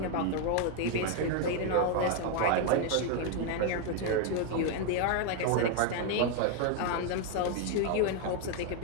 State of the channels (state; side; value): different; both; correlation 0.01